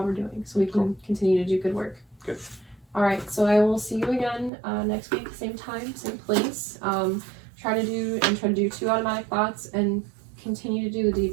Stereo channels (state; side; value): drops out; left; at 4.5 s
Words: we're doing so we can continue to do good work. Good. All right, so I will see you again next week, same time, same place. Try to do 2 automatic thoughts, and continue to do the